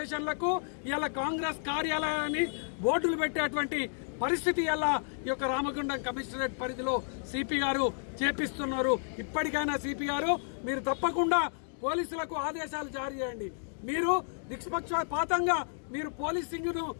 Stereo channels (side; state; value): right; silent; digital silence